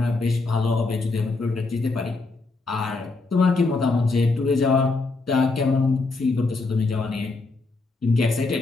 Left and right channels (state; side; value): quieter; right; 3.6 dB